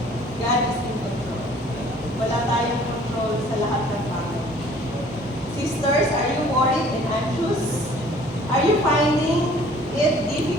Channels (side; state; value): both; normal; correlation 0.53